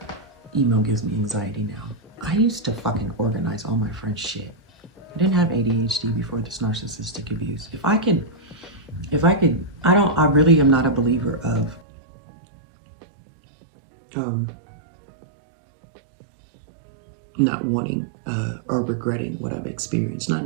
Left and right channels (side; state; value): left; drops out; at 11.8 s